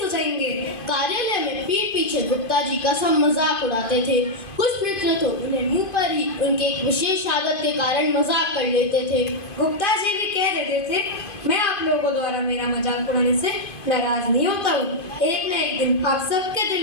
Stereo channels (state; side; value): late; right; 2.5 ms